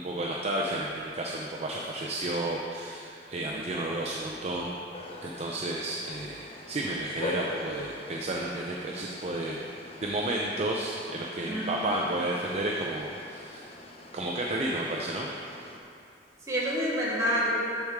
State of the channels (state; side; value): normal; both; correlation 0.24